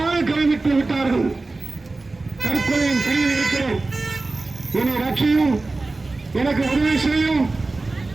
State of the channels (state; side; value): quieter; left; 3.4 dB